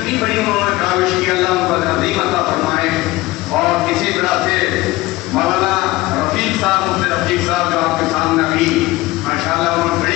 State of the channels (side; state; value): right; quieter; 19.5 dB